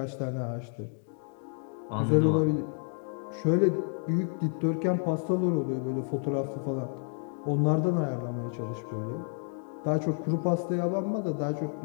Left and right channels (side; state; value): right; silent; 58 dB below the other